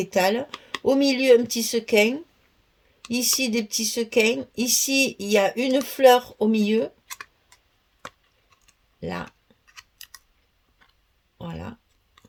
Au milieu, un petit sequin. Ici, des petits sequins. Ici, il y a une fleur au milieu. Là. Voilà.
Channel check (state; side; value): identical; both; correlation 1.00